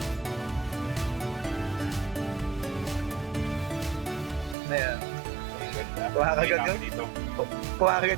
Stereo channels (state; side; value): drops out; left; at 4.5 s